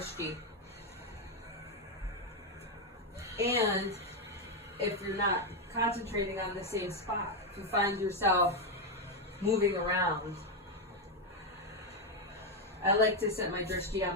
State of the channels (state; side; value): normal; both; correlation 0.05